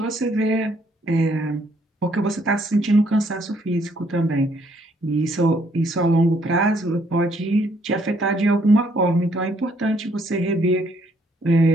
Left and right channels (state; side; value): normal; both; correlation 0.68